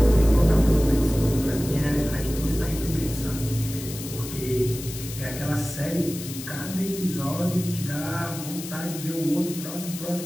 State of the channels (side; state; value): left; noise; hiss, 11 dB below the sound